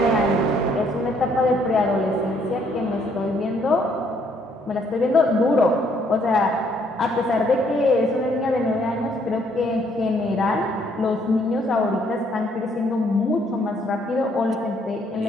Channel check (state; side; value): normal; both; correlation 0.67